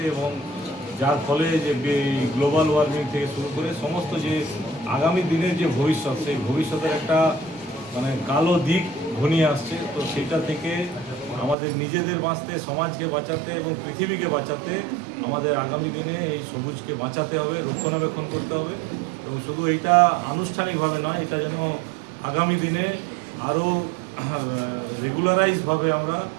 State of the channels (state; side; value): drops out; left; at 11.6 s